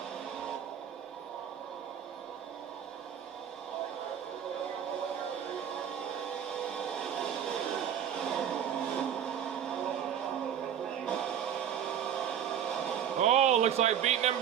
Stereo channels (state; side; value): quieter; left; 9.1 dB